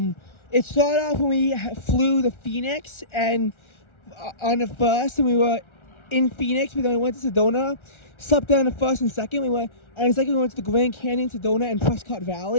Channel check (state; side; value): late; right; 1.4 ms